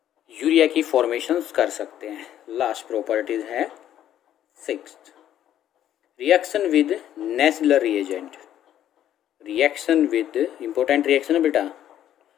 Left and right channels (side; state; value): right; quieter; 11.3 dB